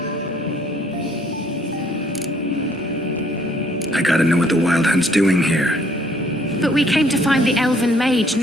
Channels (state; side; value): normal; both; correlation 0.63